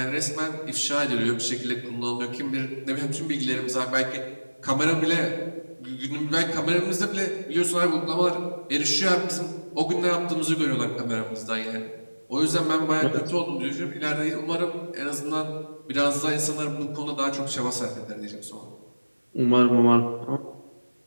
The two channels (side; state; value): both; inverted; correlation -1.00